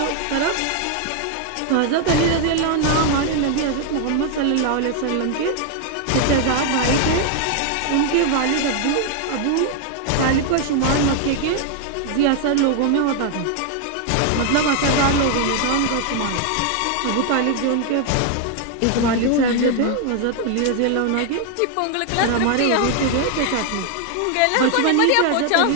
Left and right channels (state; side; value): different; both; correlation 0.00